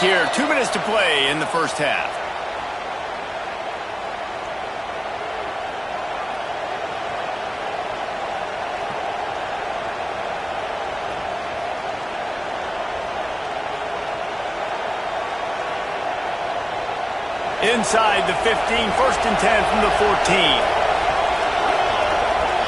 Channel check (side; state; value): both; identical; correlation 1.00